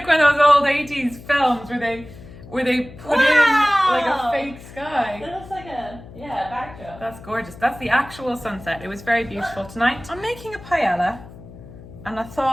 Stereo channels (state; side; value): noise; left; hum, 17 dB below the sound